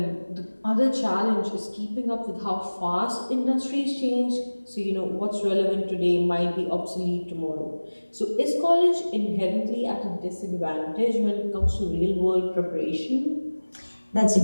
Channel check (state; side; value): inverted; both; correlation -1.00